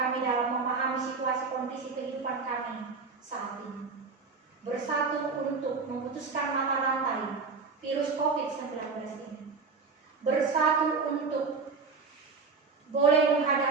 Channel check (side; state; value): left; quieter; 4.7 dB